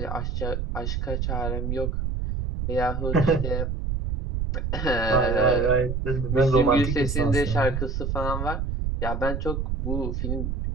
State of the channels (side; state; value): right; noise; rumble, 2 dB below the sound